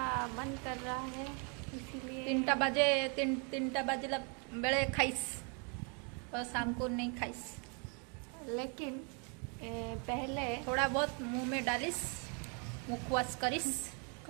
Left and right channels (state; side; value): quieter; left; 36.3 dB